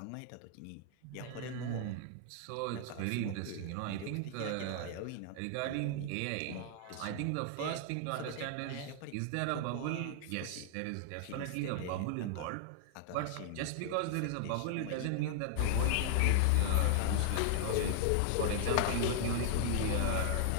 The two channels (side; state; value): both; different; correlation -0.01